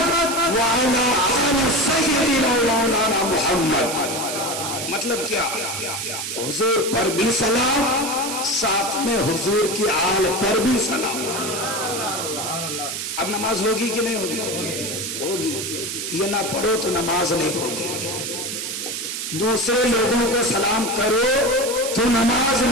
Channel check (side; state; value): right; noise; hiss, 4 dB below the sound